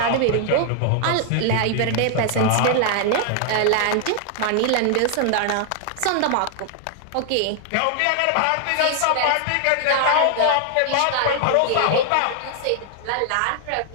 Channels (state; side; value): different; both; correlation 0.00